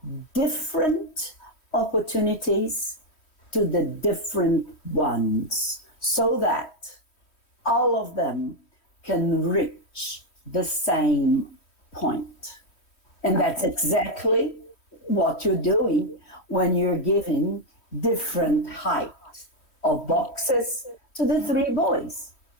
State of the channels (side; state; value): right; late; 3.1 ms